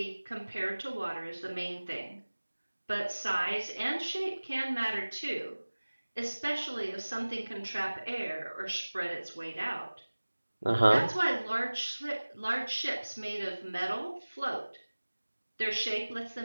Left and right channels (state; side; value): inverted; both; correlation -1.00